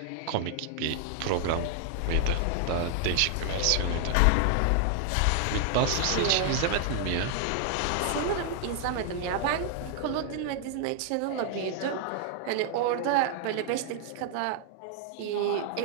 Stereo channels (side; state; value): both; different; correlation 0.00